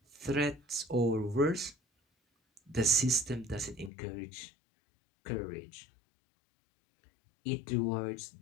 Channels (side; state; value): right; drops out; at 3.9 s